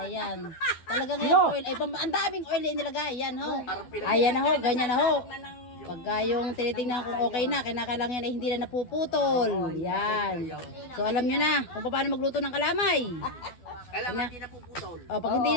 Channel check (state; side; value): late; right; 12 ms